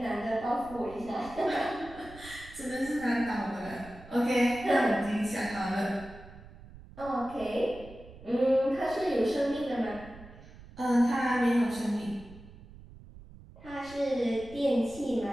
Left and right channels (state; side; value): noise; right; rumble, 18 dB below the sound